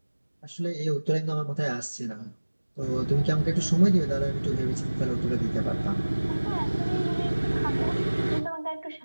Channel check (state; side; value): inverted; both; correlation -1.00